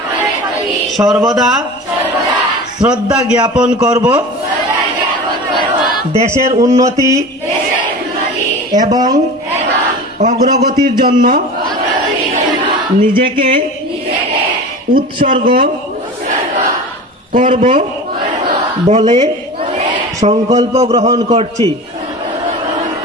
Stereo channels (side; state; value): both; normal; correlation 0.34